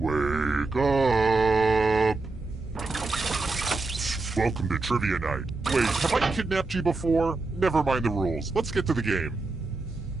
up. Welcome to Trivia Night. Wait, have I kidnapped you before? Never mind the rules. Let's get to the game.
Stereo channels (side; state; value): left; quieter; 3.5 dB